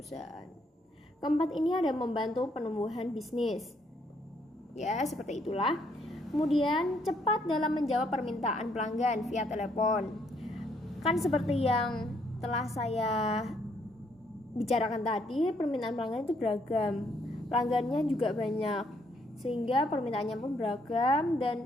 Keempat ini ada membantu penumbuhan bisnis. Ya, seperti itulah. Kemudian cepat dalam menjawab permintaan pelanggan via telepon. Kan seperti yang telah saya bicarakan tadi, permintaan pelanggan itu beragam, pelanggannya juga banyak, sehingga permintaannya pun beragam.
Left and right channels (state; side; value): normal; both; correlation 0.70